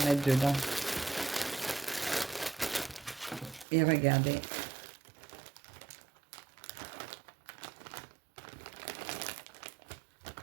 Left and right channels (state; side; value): drops out; left; at 3.7 s